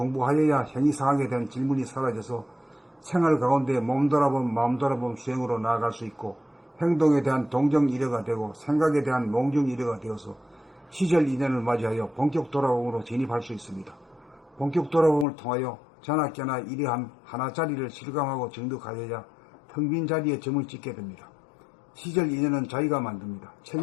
형이상학에 대한 질문이 사라져서 생활 가운데 몸 돌아봄 마음 돌아봄 수행으로 나아갈 수 있고 행동에 대한 동정이래가 되고 생각에 대한 몽중이래가 되어서 시절 2년을 맞이하여 본격 돌아봄으로 진입할 수 있습니다. 본격 돌아봄을 통하여 자나깨나 이러한 하나짜리를 실감하고 정득하여야 텅 빈 자리에 점을 찍게 됩니다. 시절 2년은 자기가 만듭니다. 책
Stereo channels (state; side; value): drops out; right; at 15.2 s